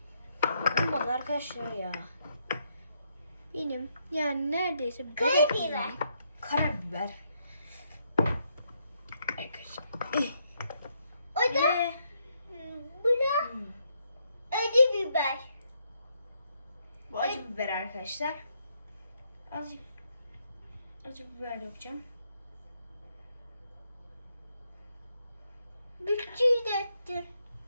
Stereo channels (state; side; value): inverted; both; correlation -0.76